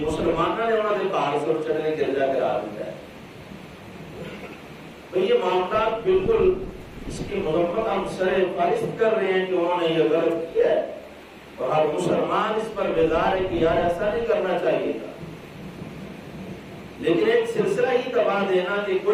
مسلمانوں نے انہوں نے پہاڑ سے چڑھنے گرجا کرا دیا ہے۔ تو یہ معاملات بالکل اس کی مذمت ہم سر فہرست کر رہے ہیں کہ انہوں نے یہ غلط کیا ہے، اور ہر مسلمان اس پر بیدار ہے کہ یار ایسا نہیں کرنا چاہیے تھا۔ لیکن ایک سلسلہ ہی دبا دینا کہ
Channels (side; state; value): both; identical; correlation 1.00